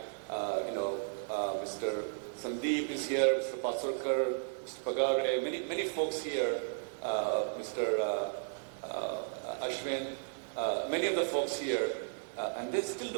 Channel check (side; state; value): left; silent; digital silence